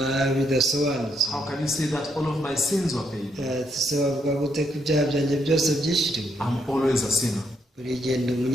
bidasobanutse. How can you say that all of my sins were paid? Se bavuga gute ko ibyaha byanjye byose byishyuriwe? I'm always a sinner. Buri gihe ndi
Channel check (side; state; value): both; normal; correlation 0.75